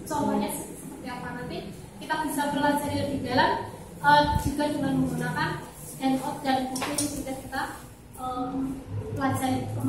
contohnya seperti apa. Nanti kita bisa pelajari lebih dalam juga dengan menggunakan handout dan buku yang sudah kita pelajari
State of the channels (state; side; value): identical; both; correlation 1.00